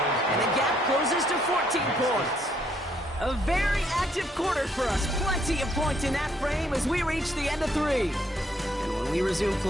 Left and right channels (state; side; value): normal; both; correlation 0.69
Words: And the gap closes to 14 points. A very active quarter for us. Plenty of points in that frame as we reach the end of 3. And when we resume